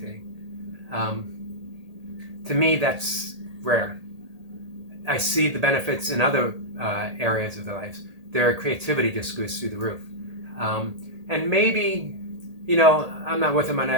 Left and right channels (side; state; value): left; late; 1.8 ms